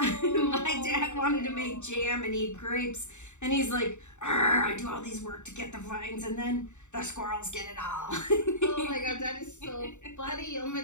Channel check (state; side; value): late; right; 0.84 ms